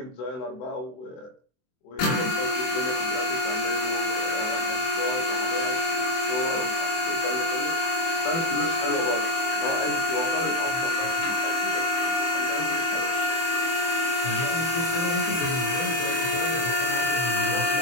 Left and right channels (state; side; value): late; right; 24 ms